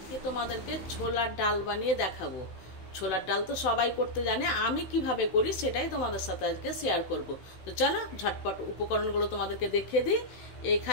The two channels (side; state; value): right; late; 15 ms